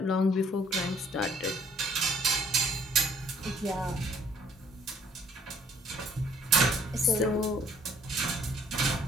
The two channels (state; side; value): normal; both; correlation 0.61